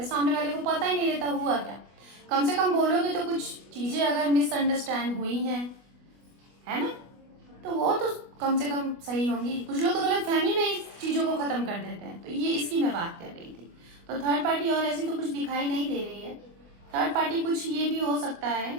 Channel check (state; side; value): late; left; 24 ms